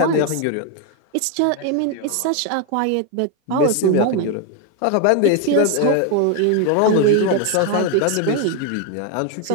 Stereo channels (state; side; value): different; both; correlation 0.01